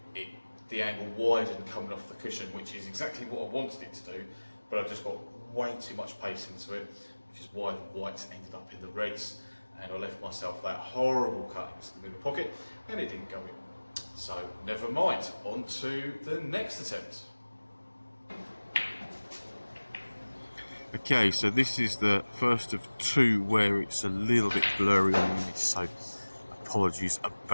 the angle widened coming off the cushion, which is exactly what I wanted it to do, but I just got way too much pace into it, which is why the whites ended up in the reds, and I left myself that horrible cut into the middle pocket, and it didn't go in. So never mind, on to the next attempt. Okay, so this is the first of two where it's a little bit blurry on the image, so apologies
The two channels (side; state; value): both; inverted; correlation -1.00